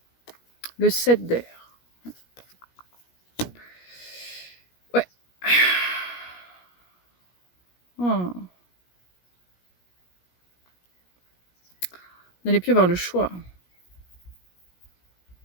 Le 7 d'air. Ouais. Oh. Vous n'allez plus avoir le choix.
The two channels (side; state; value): right; late; 17 ms